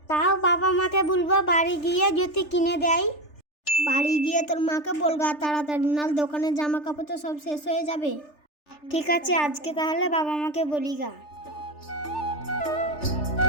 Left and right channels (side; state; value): right; late; 3.4 ms